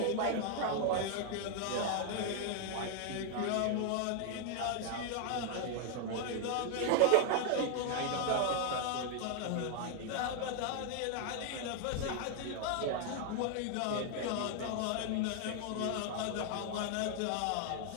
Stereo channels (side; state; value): both; different; correlation 0.00